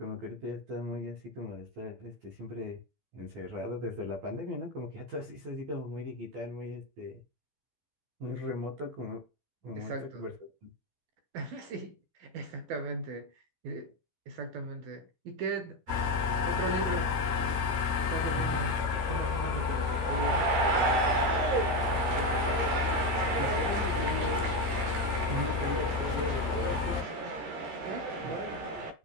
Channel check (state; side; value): late; left; 13 ms